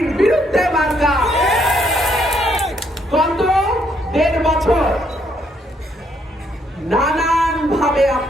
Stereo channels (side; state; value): both; normal; correlation 0.72